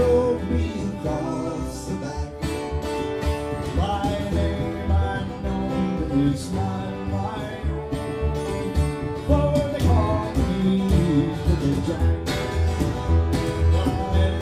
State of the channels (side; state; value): both; identical; correlation 1.00